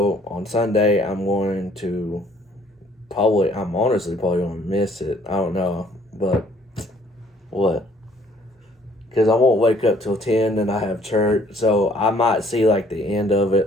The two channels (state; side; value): normal; both; correlation 0.61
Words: on Sunday, I'm honestly probably going to miss it. I don't know. But what? Because I won't wake up till 10 and I have church. So I might see like the end of